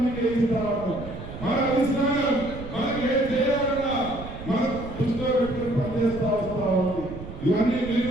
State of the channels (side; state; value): right; noise; rumble, 12 dB below the sound